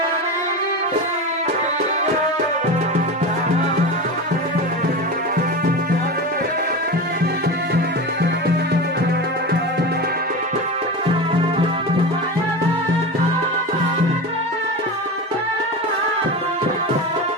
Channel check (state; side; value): normal; both; correlation 0.25